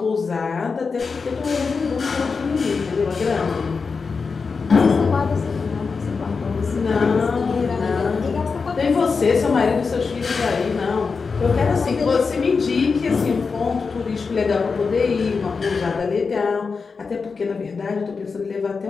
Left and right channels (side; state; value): right; quieter; 4.9 dB